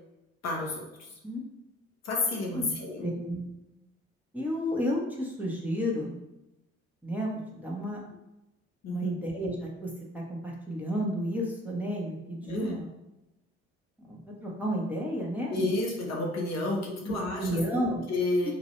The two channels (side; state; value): both; normal; correlation 0.56